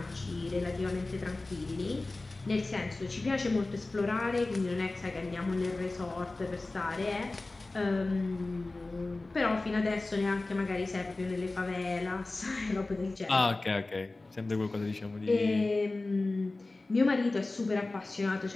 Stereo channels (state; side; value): quieter; right; 3.1 dB